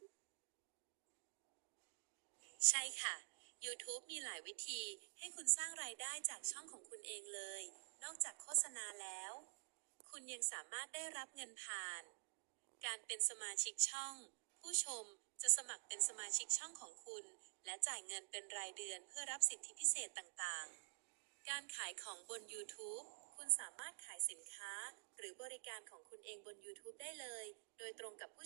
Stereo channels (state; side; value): silent; left; digital silence